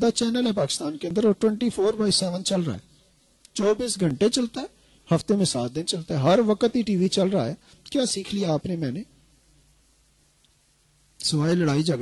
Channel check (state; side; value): identical; both; correlation 1.00